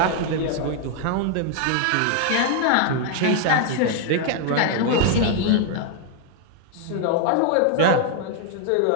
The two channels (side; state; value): both; different; correlation 0.00